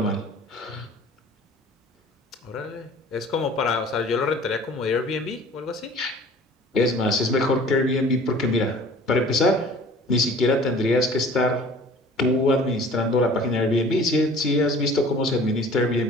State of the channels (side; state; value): both; normal; correlation 0.48